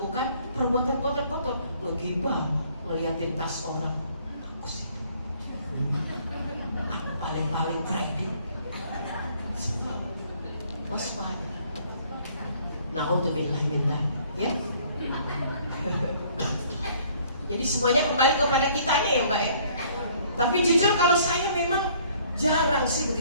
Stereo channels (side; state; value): both; inverted; correlation -0.59